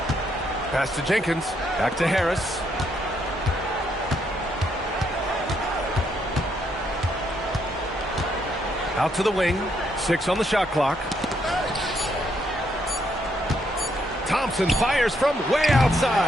Pass to Jenkins. Back to Harris. Out to the wing. 6 on the shot clock. Thompson fires from way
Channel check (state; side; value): normal; both; correlation 0.74